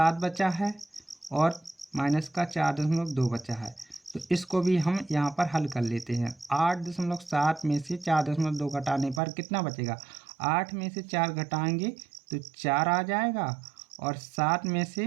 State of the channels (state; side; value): drops out; left; at 9.2 s